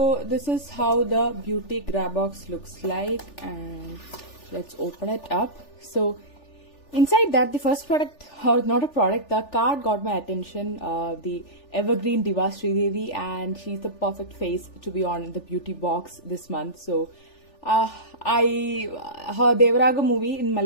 this is how the Beauty Grabox looks like, and let's open it up. So inside that, the first product, or not a product, the card got my attention. The Evergreen Diva Sridevi, and she's the perfect face to be on the beauty box this month. So her Devaraga movie in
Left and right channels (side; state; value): right; late; 3.4 ms